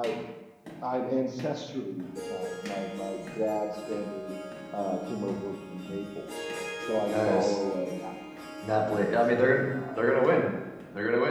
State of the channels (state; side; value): identical; both; correlation 1.00